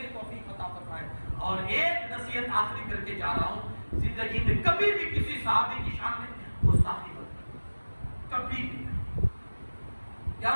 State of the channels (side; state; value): both; inverted; correlation -1.00